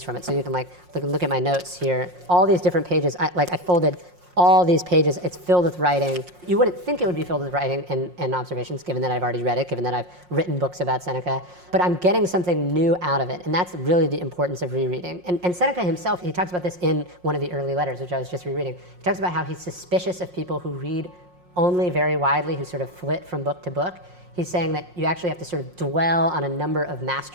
from it. So you can look at my notes here. All these different pages, I folded all these pages, it's filled with writing. You wouldn't think it would be filled with writing and observations, given that I've already read it, given that I've written books about Seneca, but I'm getting something new out of it, and that's really the importance of rereading. And Seneca himself, he talks about this in one of the early letters, which I was just rereading. He talks about how he's suspicious of people who read only very widely, who sort of flit from book to book. He's saying that you actually have to sort of dwell on a number of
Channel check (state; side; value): late; left; 5.6 ms